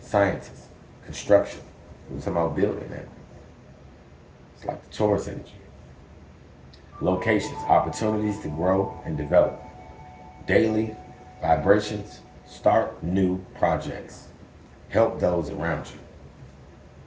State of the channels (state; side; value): identical; both; correlation 1.00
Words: scientists, construction. We're talking about building that. It's like the Taurus energy. Locations, opportunities to grow and develop. Daily vibrations, start new projects. Help those around you.